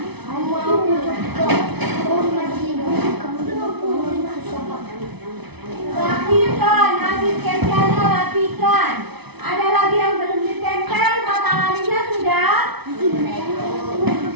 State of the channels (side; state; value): left; late; 0.99 ms